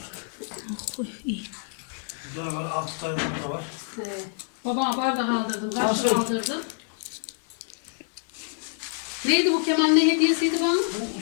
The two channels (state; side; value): silent; right; 60 dB below the other